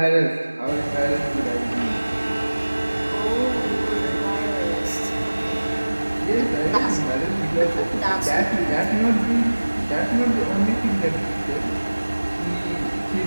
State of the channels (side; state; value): both; inverted; correlation -1.00